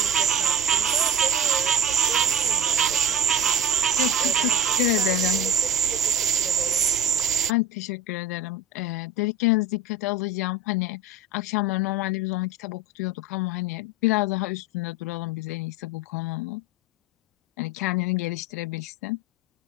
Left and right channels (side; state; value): both; normal; correlation 0.32